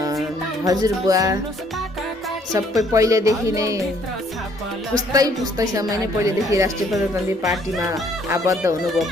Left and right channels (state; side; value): normal; both; correlation 0.63